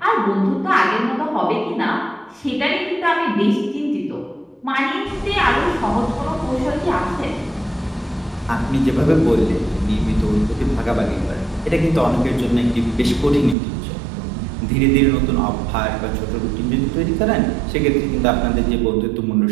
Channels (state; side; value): drops out; left; at 13.6 s